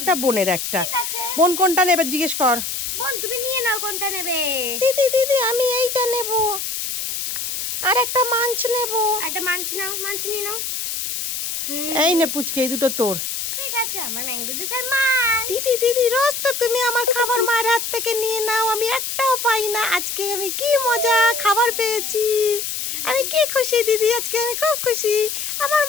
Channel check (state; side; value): noise; left; hiss, 4 dB below the sound